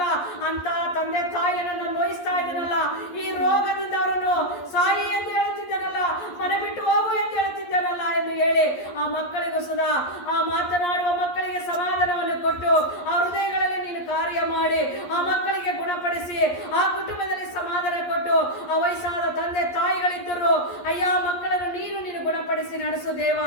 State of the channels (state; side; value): late; right; 11 ms